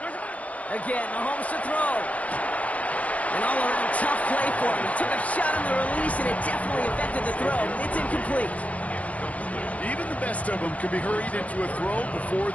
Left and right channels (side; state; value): right; late; 0.068 ms